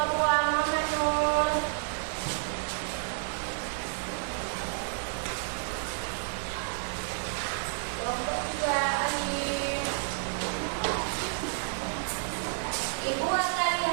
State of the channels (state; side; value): silent; left; digital silence